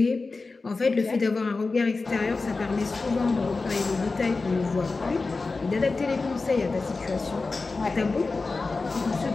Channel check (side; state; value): right; quieter; 3.8 dB